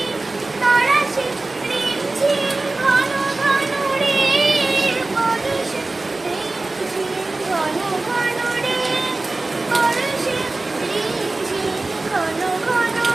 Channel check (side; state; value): left; quieter; 3.2 dB